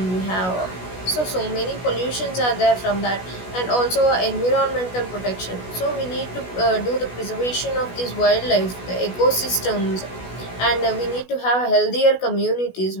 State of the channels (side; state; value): right; late; 16 ms